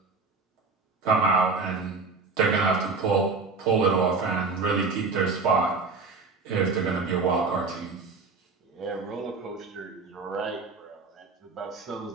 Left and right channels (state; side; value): quieter; left; 4.2 dB